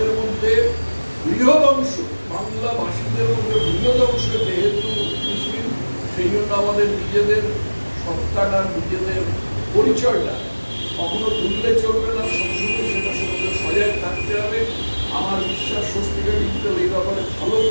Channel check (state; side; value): inverted; both; correlation -1.00